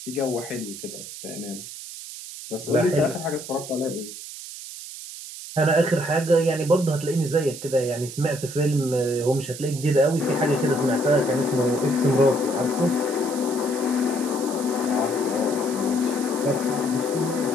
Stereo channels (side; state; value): right; noise; hiss, 11 dB below the sound